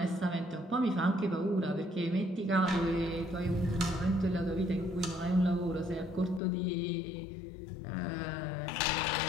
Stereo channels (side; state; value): right; drops out; at 6.4 s